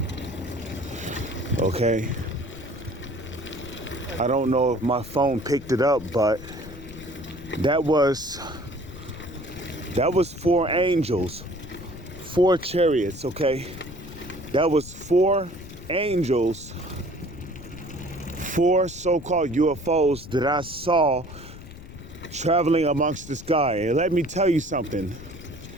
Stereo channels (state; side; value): noise; left; rumble, 14 dB below the sound